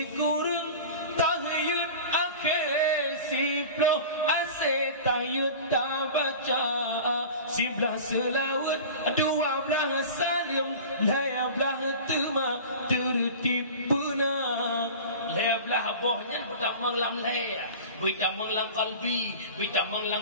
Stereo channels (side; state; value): both; inverted; correlation -0.36